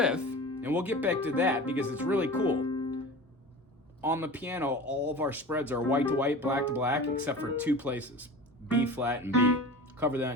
and we'll get back to that because it's really cool. On the piano, all of our spreads are white to white, black to black, except for 2 places, B flat and B. Cover that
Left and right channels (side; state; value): both; normal; correlation 0.35